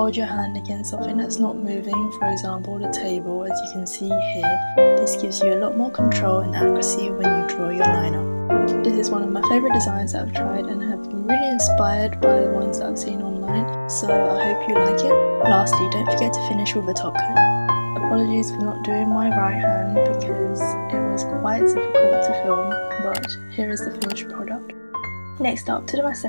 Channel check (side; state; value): both; inverted; correlation -1.00